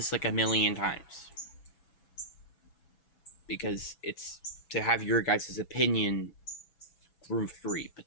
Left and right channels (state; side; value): late; right; 6.1 ms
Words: like a million times. Because it's to have your guys' opinion room free. But